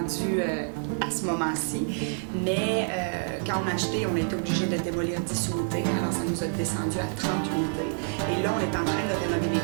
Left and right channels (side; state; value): left; silent; 59 dB below the other